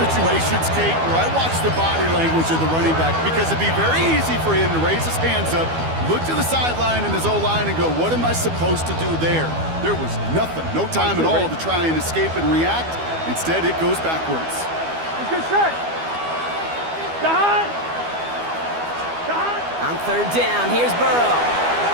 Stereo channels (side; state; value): left; late; 12 ms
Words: Kate, where I watch the body language of the running back because it'd be very easy for him to raise his hands up, look to the sideline and his O-line and go, what am I supposed to do there? There was nothing, no time at all to try and escape and react. Instead, it goes backwards. Let's get set. On third down, here's Burrow.